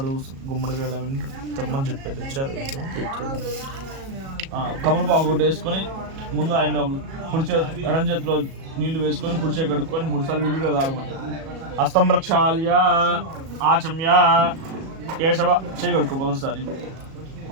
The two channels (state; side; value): late; left; 37 ms